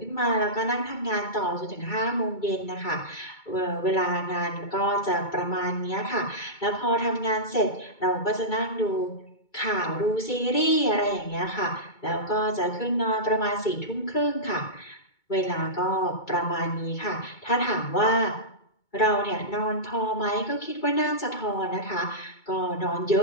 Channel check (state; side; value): late; right; 2.2 ms